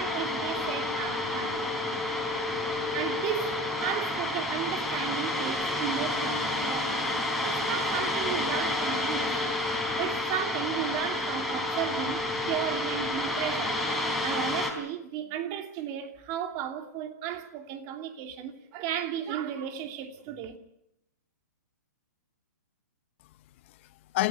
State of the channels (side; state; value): both; normal; correlation 0.39